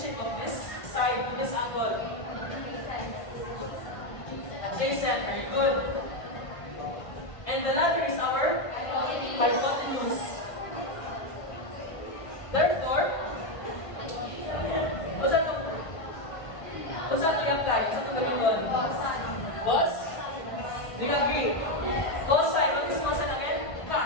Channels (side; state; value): right; late; 1.5 ms